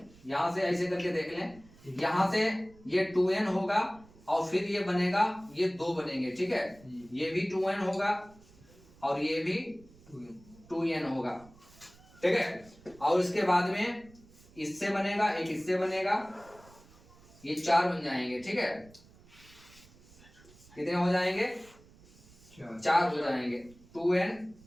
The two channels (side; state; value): right; noise; rumble, 25 dB below the sound